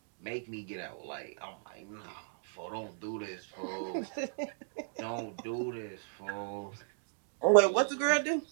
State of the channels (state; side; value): silent; left; digital silence